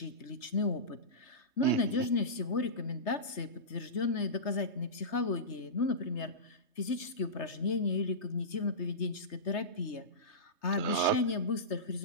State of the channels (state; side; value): late; right; 3.3 ms